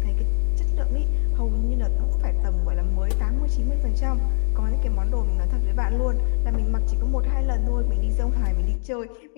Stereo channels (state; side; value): silent; right; digital silence